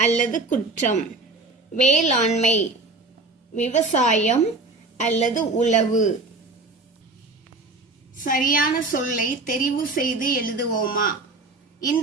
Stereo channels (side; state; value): left; quieter; 3.3 dB